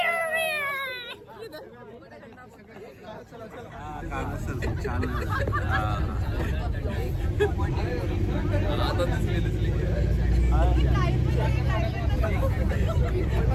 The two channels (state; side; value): identical; both; correlation 1.00